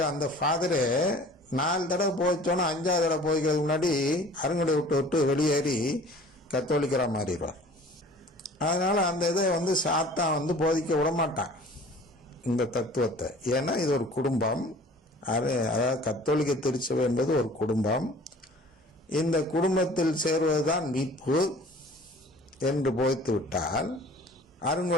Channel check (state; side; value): normal; both; correlation 0.47